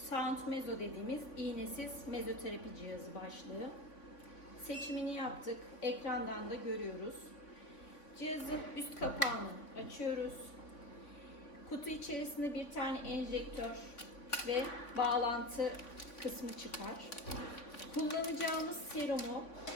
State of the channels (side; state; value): right; late; 3.5 ms